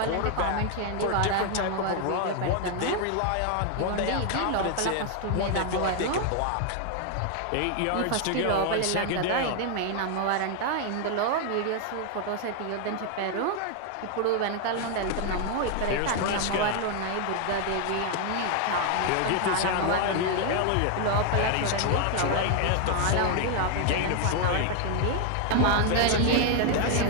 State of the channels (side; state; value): both; different; correlation 0.00